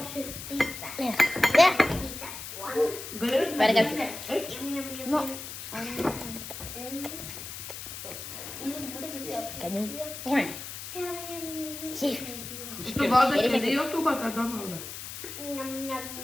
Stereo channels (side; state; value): left; noise; hiss, 9 dB below the sound